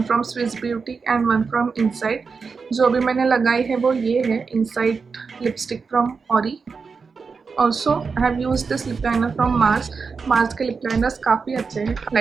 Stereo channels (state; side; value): quieter; left; 5.1 dB